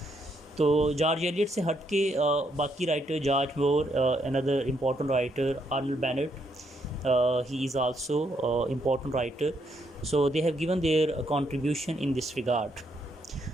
तो George Elliott से हट के बाकी writer, George more, another important writer, Arnold Bennett, he is also important writer. So they have given their contribution in this regard.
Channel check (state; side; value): normal; both; correlation 0.75